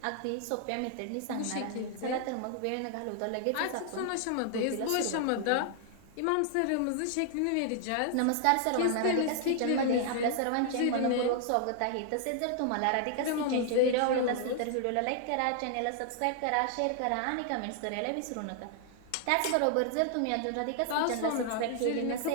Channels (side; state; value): both; different; correlation 0.00